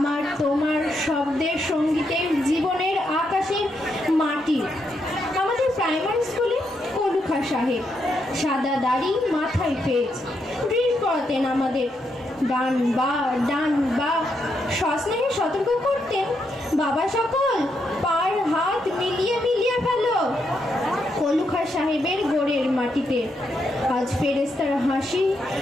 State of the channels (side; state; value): both; normal; correlation 0.80